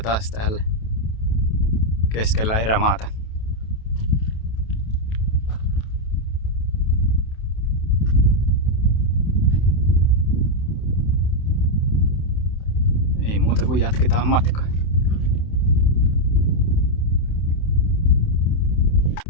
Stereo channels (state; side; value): late; right; 27 ms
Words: täällä keskellä erämaata. Ei muuta kuin jatketaan matkaa.